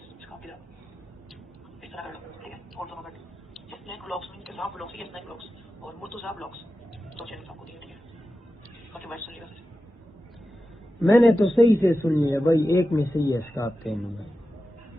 काफी इस तरह कर लो, ठीक है। और दोनों बैठ स्नैक ब्लॉग्स में किसान ब्लॉग्स या स्नैक ब्लॉग्स और मुर्तुजा ब्लॉग्स, तो चैनल आपको दिया, ठीक है। बाकी बात सुनिएगा। मैंने तो सही से सुनी है भाई, एक में सही है स्कार्फ पहनूंगा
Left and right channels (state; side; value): normal; both; correlation 0.92